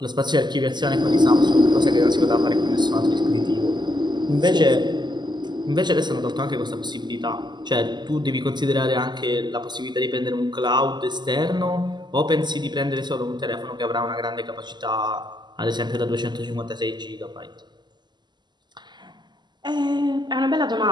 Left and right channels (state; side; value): late; left; 0.21 ms